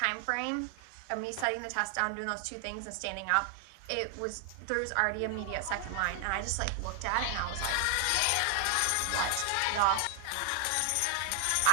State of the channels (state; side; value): different; both; correlation 0.00